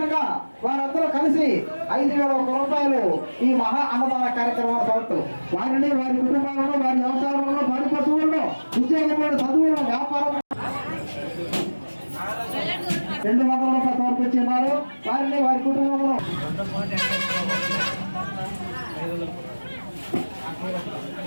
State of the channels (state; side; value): inverted; both; correlation -1.00